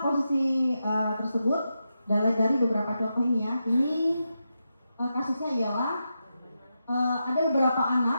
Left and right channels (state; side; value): inverted; both; correlation -0.87